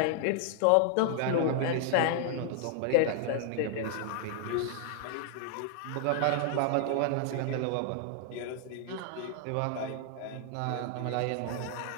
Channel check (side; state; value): both; different; correlation 0.00